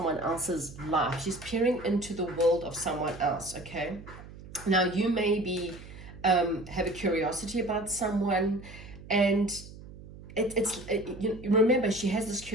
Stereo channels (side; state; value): right; noise; hum, 16 dB below the sound